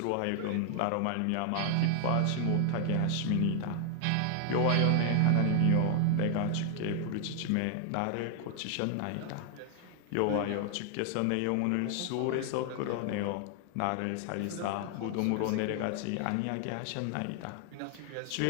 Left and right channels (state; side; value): different; both; correlation 0.00